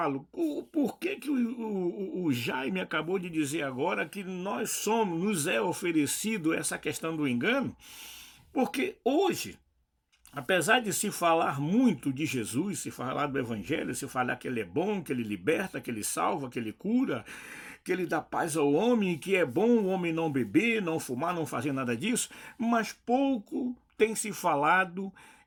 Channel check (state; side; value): identical; both; correlation 1.00